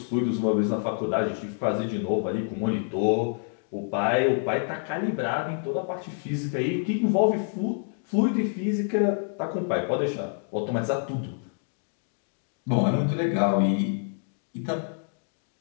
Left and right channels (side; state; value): right; silent; 60 dB below the other